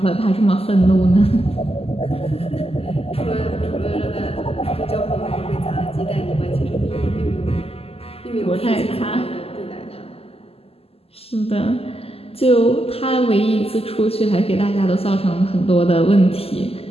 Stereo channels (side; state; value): right; late; 0.29 ms